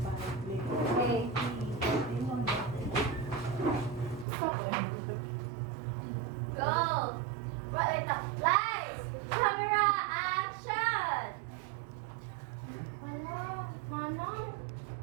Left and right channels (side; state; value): left; drops out; at 4.2 s